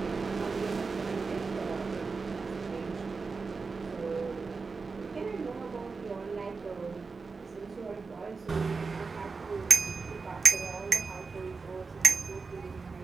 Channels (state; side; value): quieter; left; 4.5 dB